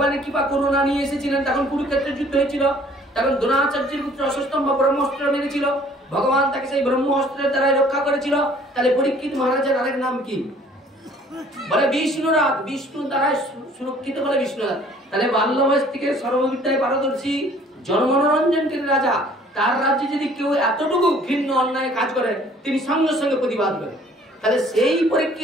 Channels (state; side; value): normal; both; correlation 0.56